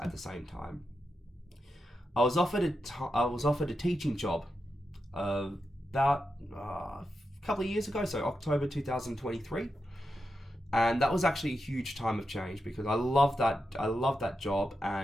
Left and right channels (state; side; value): normal; both; correlation 0.87